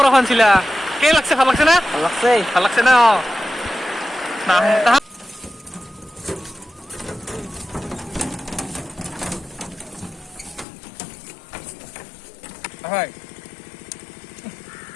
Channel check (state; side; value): drops out; right; at 10.7 s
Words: শুনছিলা কেই লাগছে ভাল লাগছে না ভাল লাগছে না হয়